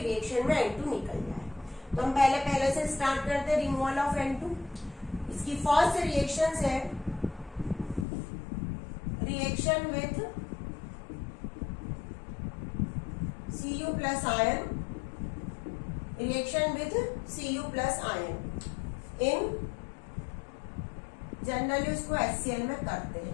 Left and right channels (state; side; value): drops out; right; at 8.1 s